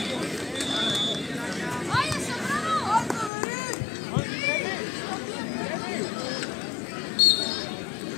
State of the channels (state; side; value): drops out; right; at 3.3 s